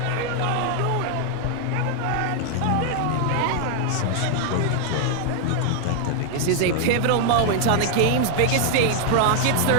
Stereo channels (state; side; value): different; both; correlation 0.00